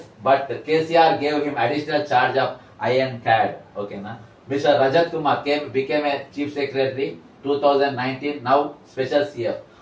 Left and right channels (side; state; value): both; identical; correlation 1.00